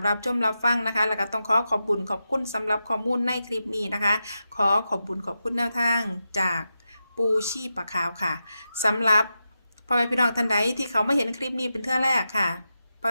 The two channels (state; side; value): inverted; both; correlation -0.90